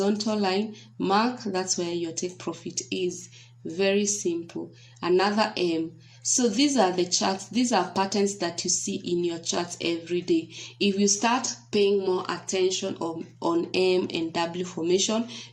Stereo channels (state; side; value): identical; both; correlation 1.00